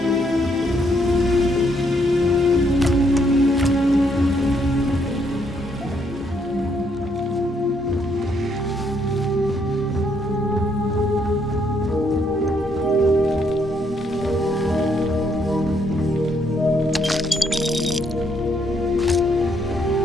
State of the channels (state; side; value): normal; both; correlation 0.72